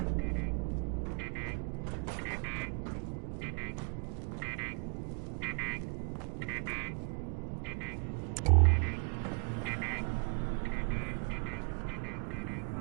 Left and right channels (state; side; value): quieter; left; 36.6 dB